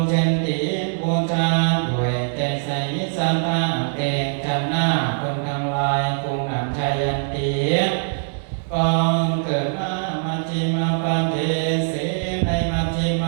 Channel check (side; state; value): left; silent; digital silence